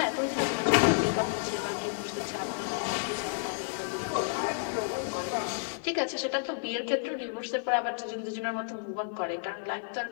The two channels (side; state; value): right; silent; digital silence